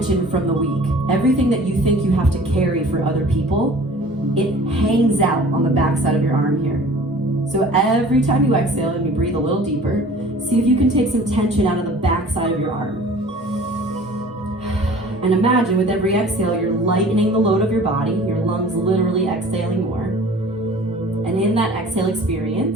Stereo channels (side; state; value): both; normal; correlation 0.46